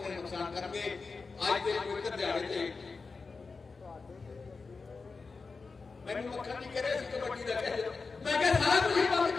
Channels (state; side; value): quieter; right; 4.4 dB